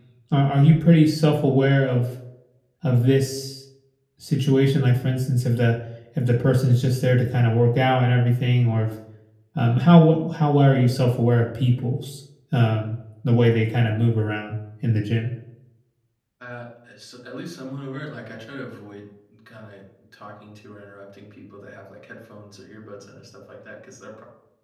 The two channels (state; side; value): identical; both; correlation 1.00